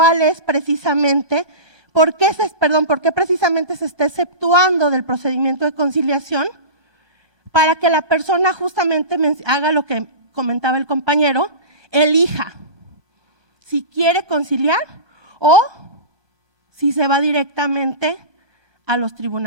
es precisamente, por qué precisamente se está exceptuando del procedimiento de conciliación para que la persona justamente haga lo que comentaba el compañero, elija si quiere conciliar o si se va directamente a los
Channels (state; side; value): late; left; 1.0 ms